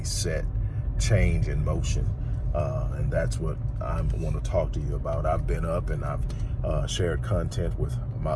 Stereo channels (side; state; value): both; identical; correlation 1.00